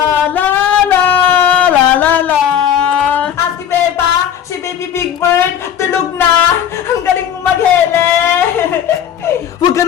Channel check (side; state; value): right; quieter; 9.3 dB